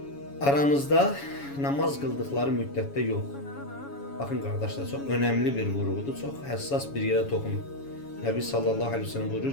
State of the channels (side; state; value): right; late; 7.1 ms